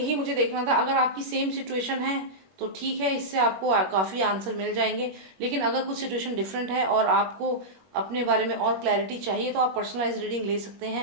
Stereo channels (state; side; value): late; left; 21 ms